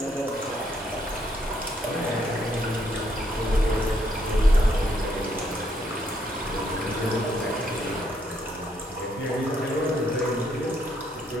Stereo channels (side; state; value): both; normal; correlation 0.73